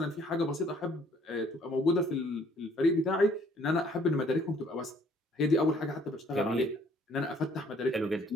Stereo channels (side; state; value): both; normal; correlation 0.61